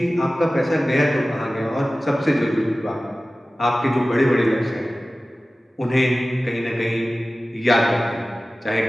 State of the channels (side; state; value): both; normal; correlation 0.96